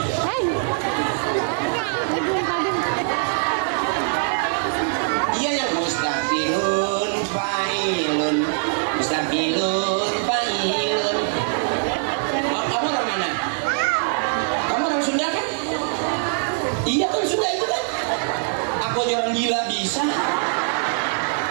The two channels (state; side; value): silent; left; digital silence